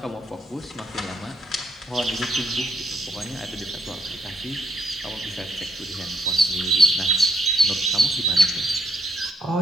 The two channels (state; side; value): normal; both; correlation 0.73